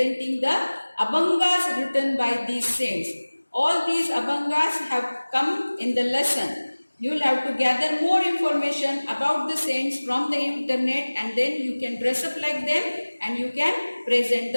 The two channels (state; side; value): inverted; both; correlation -1.00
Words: the Abhangas written by these saints. All these Abhangas have come in the lesson. You will have to gather more information about the saints from the internet and then you can dress up like them and you can present